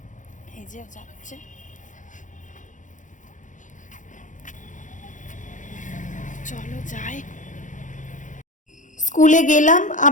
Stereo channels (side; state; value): right; late; 0.37 ms